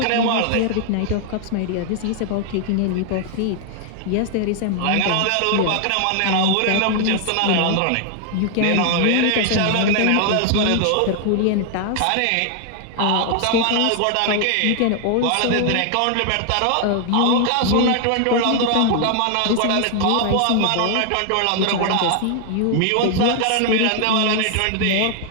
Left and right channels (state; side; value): different; both; correlation 0.00